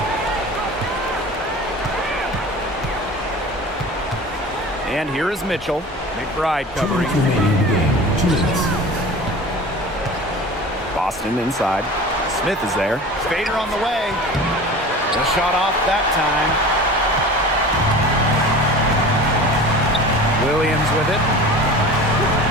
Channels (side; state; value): both; normal; correlation 0.37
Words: And here is Mitchell. McBride covering. Boston inside. Smith is there. Spader on the way. The shot off that time. Williams with it.